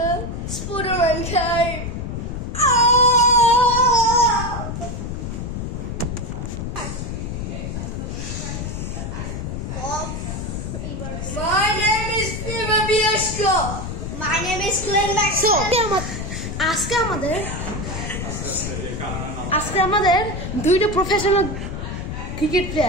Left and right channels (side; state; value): left; noise; rumble, 5 dB below the sound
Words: Spooderman came. Oh! My name is Fever Bieshko. My name is Glenn Maxwell. আজকে আমাদের দুইটা professional cricket